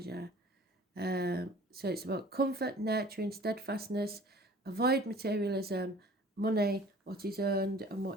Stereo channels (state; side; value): normal; both; correlation 0.48